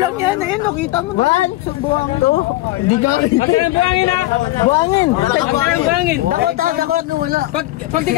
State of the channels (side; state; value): right; quieter; 17.6 dB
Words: yan, ayun, nakita mo. One. Buwang to. Hindi ka. Magka ng buhangin ha. Buwangin. Magka ng buhangin. Dakot. Wala. Pag di